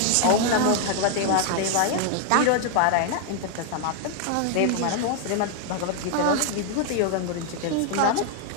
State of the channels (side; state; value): both; different; correlation 0.00